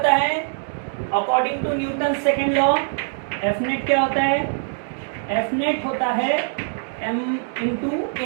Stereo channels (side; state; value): left; silent; digital silence